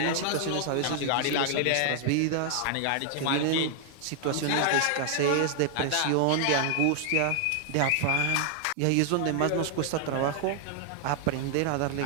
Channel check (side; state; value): both; different; correlation 0.00